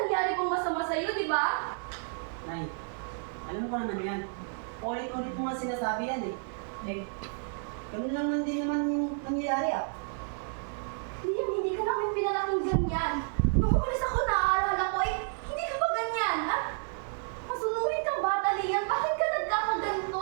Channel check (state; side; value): silent; left; 57 dB below the other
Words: nangyari kong masama sa'yo, di ba? Nay, alam ko naman yan. Ulit-ulit mo nga sinasabi yan eh. Eh, ganun lang din naman yung nangyayari ah. Lian, hindi ka namin pinalaking ganyan. Nung umalis ako, naaalala ko, hindi ka pa ganyan, ha? Masunurin kang bata, Lian. Bakit ka